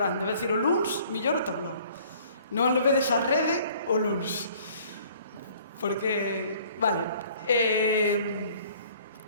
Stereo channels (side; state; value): both; inverted; correlation -0.55